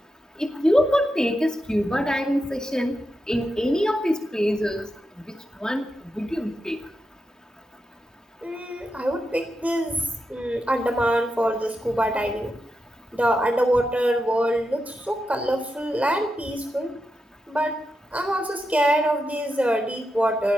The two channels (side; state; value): both; normal; correlation 0.87